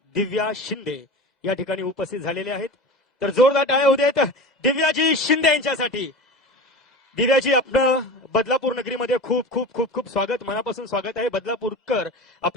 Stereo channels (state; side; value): normal; both; correlation 0.31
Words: दिव्या शिंदे या ठिकाणी उपस्थित झालेले आहेत. तर जोरदार टाळ्या होऊ देत दिव्याजी शिंदे यांच्यासाठी. दिव्याजी, आपलं बदलापूर नगरीमध्ये खूप खूप खूप खूप स्वागत, मनापासून स्वागत आहे. बदलापूरकर